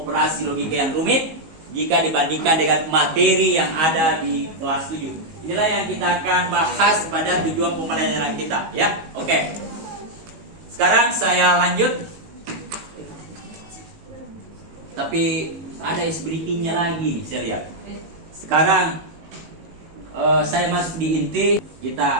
logika yang rumit jika dibandingkan dengan materi yang ada di kelas 7. Inilah yang kita akan bahas pada tujuan pembelajaran kita, ya. Oke. Sekarang saya lanjut. Tapi ada is breathingnya lagi nih, saya lihat. Sekarang saya masuk di inti,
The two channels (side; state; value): left; late; 19 ms